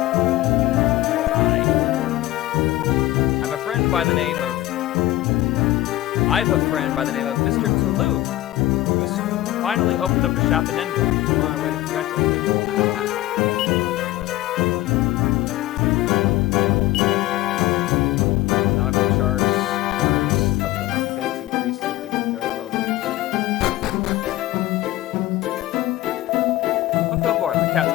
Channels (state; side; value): quieter; right; 16.1 dB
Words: Was I? I'm a friend by the name of... I've a friend by the name of Mr. Toulouse, who's finally opened up a shop in Endor. I'm on my way to congratulate him. Nautical chars, corners of them are bent and creased if they've been very well used. Welcome aboard. The